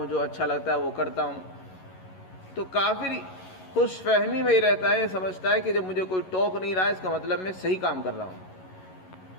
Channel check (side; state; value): right; late; 11 ms